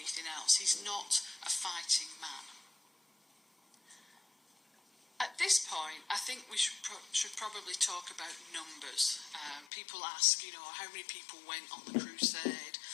else. He's not a fighting man. At this point, I think we should probably talk about numbers. People ask, how many people went on the crusade?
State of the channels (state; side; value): drops out; right; at 9.7 s